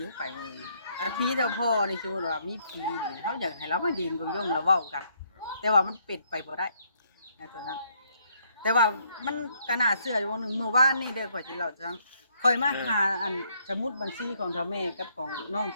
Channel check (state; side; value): inverted; both; correlation -0.70